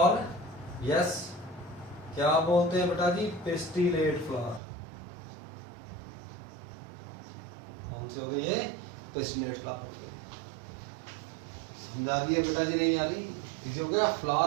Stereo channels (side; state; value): left; drops out; at 4.6 s